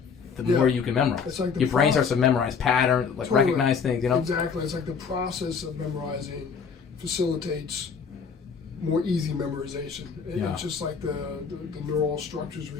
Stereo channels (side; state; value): right; quieter; 6.0 dB